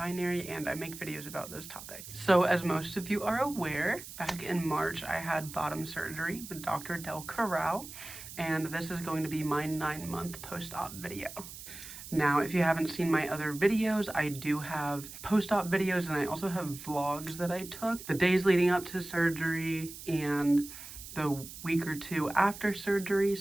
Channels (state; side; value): noise; right; hiss, 13 dB below the sound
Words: and I make videos about those topics. So as most of you are aware, back in March I had bottom surgery with Dr. Del Corral, and this is going to be my 9-month post-op video. Now, if you haven't seen my other videos, I do have post-op videos, and I also have vlogs that I took the days leading up to surgery and the week or two after surgery.